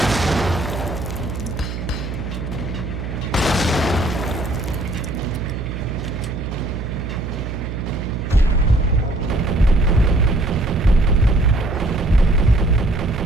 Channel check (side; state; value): right; noise; hum, 6 dB below the sound